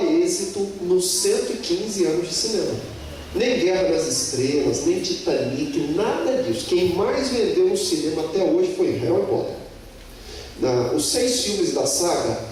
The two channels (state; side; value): identical; both; correlation 1.00